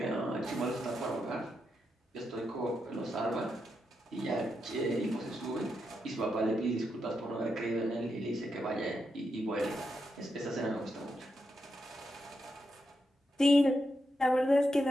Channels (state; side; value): normal; both; correlation 0.84